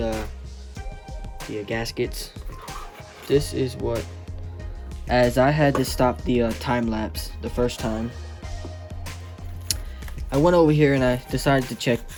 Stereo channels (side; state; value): both; identical; correlation 1.00